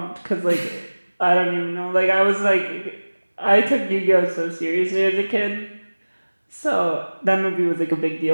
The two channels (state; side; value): inverted; both; correlation -1.00